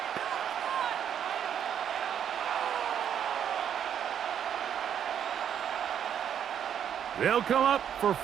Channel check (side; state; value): left; quieter; 9.0 dB